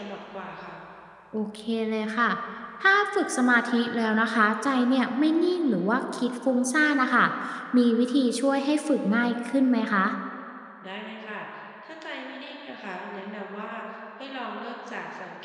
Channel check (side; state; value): both; identical; correlation 1.00